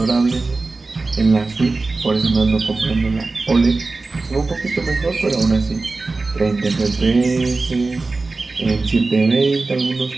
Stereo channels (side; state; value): left; quieter; 3.6 dB